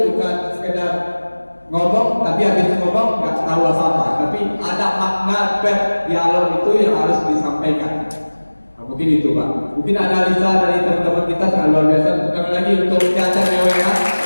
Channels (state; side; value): inverted; both; correlation -1.00